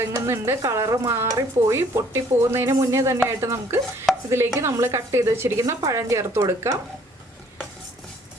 കളറ് മാറിപ്പോയി പൊട്ടിപ്പോകുന്നതിന് മുന്നേ തന്നെയായിട്ട് നമുക്ക് ഇതിലേക്ക് നമ്മൾ കട്ട് ചെയ്ത് വെച്ചിരിക്കുന്ന പഴം ചേർത്ത് കൊടുക്കാം.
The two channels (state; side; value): normal; both; correlation 0.60